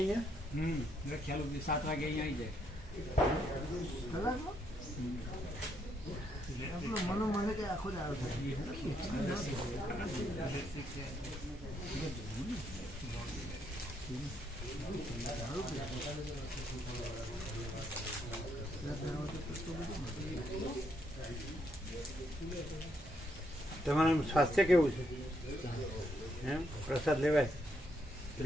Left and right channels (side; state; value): both; normal; correlation 0.75